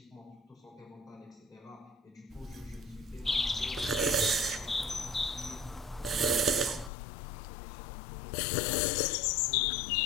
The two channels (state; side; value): drops out; right; at 6.9 s